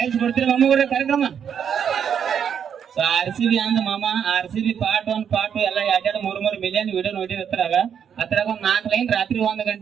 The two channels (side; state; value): left; quieter; 8.0 dB